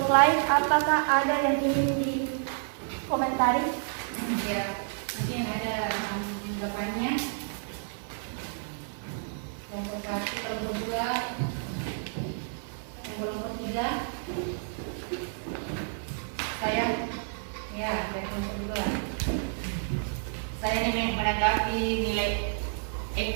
lain, apakah ada yang ingin dikomentari? Ya, mungkin ada tanggapannya. Kelompok 1, kelompok 2, kelompok 3. Saya, ya, dari kelompok 2. Saya ingin menanggapi nilai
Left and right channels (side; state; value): left; silent; digital silence